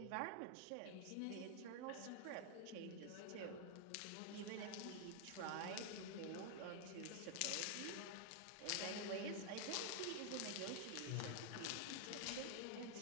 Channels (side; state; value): both; different; correlation 0.00